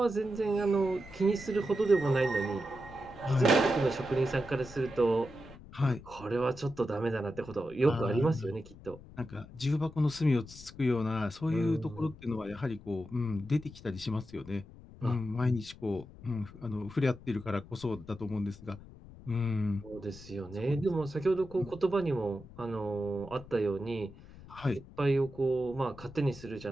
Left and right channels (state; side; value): noise; left; rumble, 18 dB below the sound